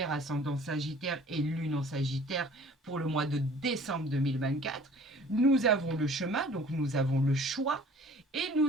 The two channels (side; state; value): both; normal; correlation 0.50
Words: ascendant Sagittaire et lune en Sagittaire pour le mois de décembre 2024. Nous avons le chemin, donc nous avons le choix, et